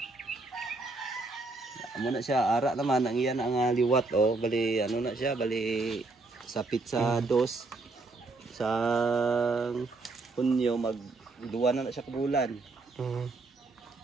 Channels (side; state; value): left; quieter; 3.5 dB